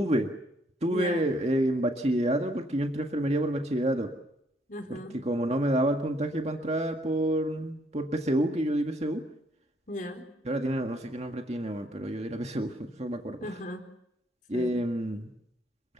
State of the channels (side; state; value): both; normal; correlation 0.68